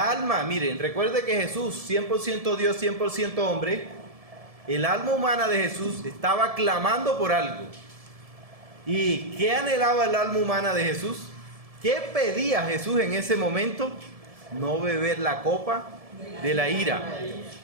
miren, recuerde que Jesús, 100% Dios, 100% hombre, el alma humana de Jesús estaba clamando por algo. ¿Y qué anhelaba el alma humana de Jesús? ¿Qué pedía Jesús en ese momento? No beber la copa de la ira.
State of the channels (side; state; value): left; late; 1.7 ms